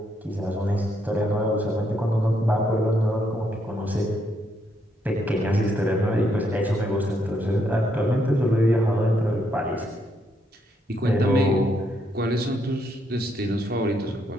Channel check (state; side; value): normal; both; correlation 0.75